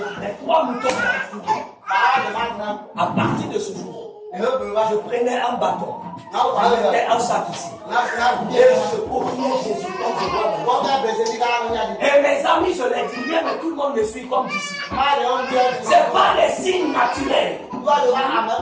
Les 3 moutons m'ont entouré. À partir de ce jour, je prenais un bâton. Je mettais un sac ici. Et je courais Jésus comme je vois. Et mes amis, je les dis bien, mais tout le monde me suit comme disciple. Ce n'est pas les signes naturels.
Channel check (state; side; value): identical; both; correlation 1.00